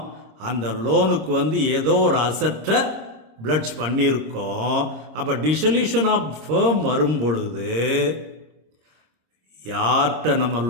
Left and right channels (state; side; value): late; left; 26 ms